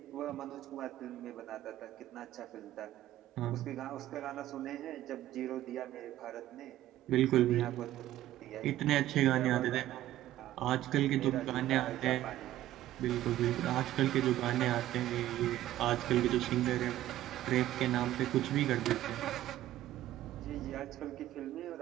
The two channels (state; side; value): quieter; left; 13.9 dB